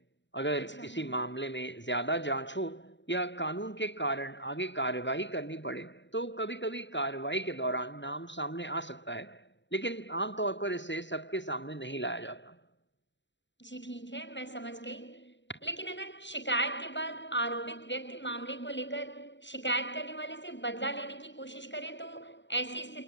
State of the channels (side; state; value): right; late; 0.53 ms